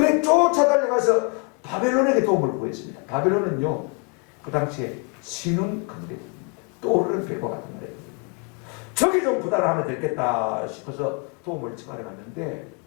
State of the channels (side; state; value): right; quieter; 33.8 dB